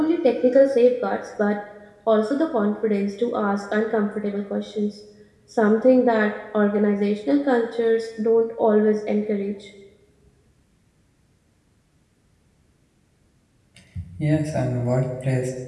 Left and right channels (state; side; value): identical; both; correlation 1.00